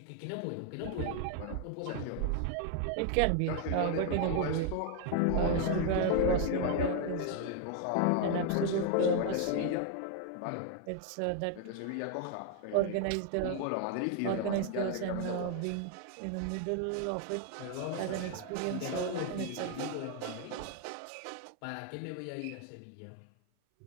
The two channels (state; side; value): different; both; correlation 0.00